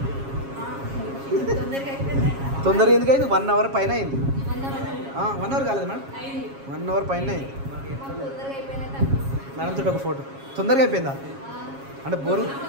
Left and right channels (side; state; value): left; late; 7.3 ms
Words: తొందరగా ఎందుకు అయింది? 1 hour పైన అయింది. 1 hour కాలేదు మేడం, 1 hour పైన అయింది. మేడం తోటి ఒక ఫోటో. తొందరగా అయిపోయిందా అంటే బోరు